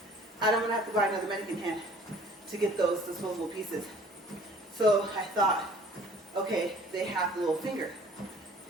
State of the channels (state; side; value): normal; both; correlation 0.52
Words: I don't want to have to buy another mannequin hand to get those disposable pieces. So I thought, okay, they have the little finger.